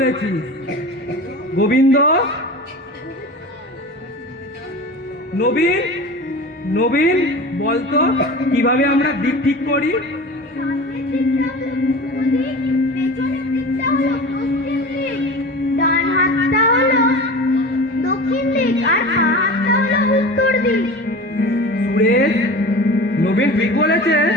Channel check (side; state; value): both; normal; correlation 0.34